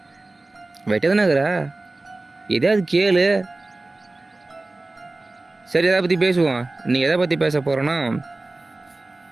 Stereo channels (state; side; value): quieter; left; 3.0 dB